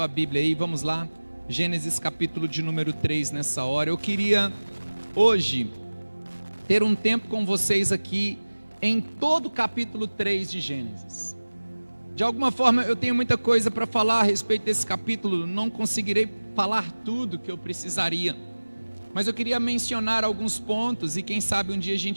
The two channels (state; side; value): inverted; both; correlation -1.00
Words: Bíblia aí, vamos lá. Gênesis, capítulo de número 3 nessa hora. Eu queria hoje ter um tempo com vocês aqui em todo o capítulo 3 de Gênesis. De alguma forma eu tenho muita coisa para falar a respeito desse capítulo, não conseguirei falar tudo que eu precisaria, mas eu queria mencionar alguns pontos e quem sabe um dia a